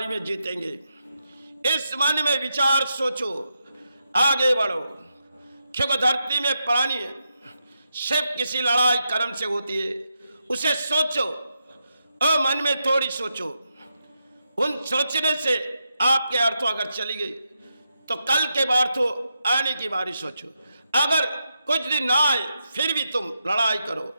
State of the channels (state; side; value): inverted; both; correlation -0.86